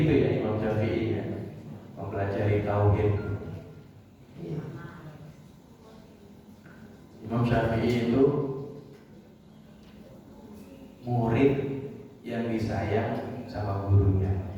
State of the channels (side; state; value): both; identical; correlation 1.00